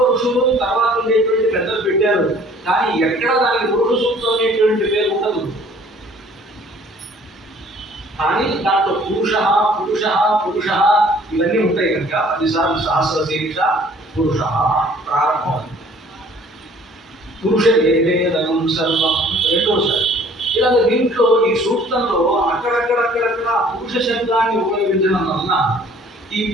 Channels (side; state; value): both; normal; correlation 0.55